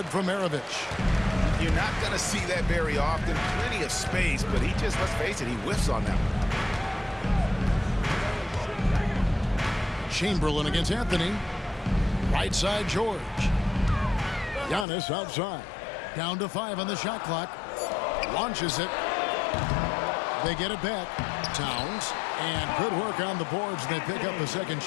from Maravich. You're not going to see that very often. Plenty of space, but he just, let's face it, he whiffs on that one. Chamberlain against Anthony. Right side, George. Giannis outside. Down to 5 on the shot clock. Launches it. They get it back. Towns. And good work on the boards. They pick up the second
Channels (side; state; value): right; drops out; at 14.9 s